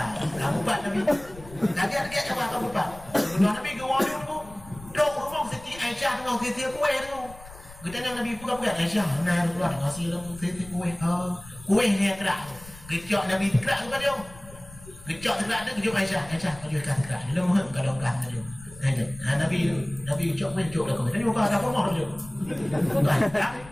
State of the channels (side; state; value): left; noise; rumble, 18 dB below the sound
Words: kamu buat Nabi. Lagi apa kamu buat? Nabi gawang tu. Dok rumah Siti Aisyah dengan Siti kuih tu. Kita nak Nabi buka-buka Aisyah. Nah keluar ngasih dalam Siti kuih. Kuih ni kerak. Kecok Nabi kerak tu dia. Kecok kerak tu kejut Aisyah. Aisyah kau jual kerak. Dia mohon kalau kan tu. Nabi kecok kuih kecok dah kau. Tadi buka dah rumah tu. Bukan.